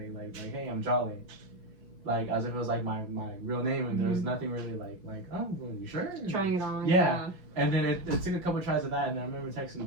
like, hey, I'm Jahlei, like as if it was like my real name, and there was nothing really like oh, well, you sure? Trying it on. Yeah. And then it took a couple of tries of that, and then I remember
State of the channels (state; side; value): late; left; 5.3 ms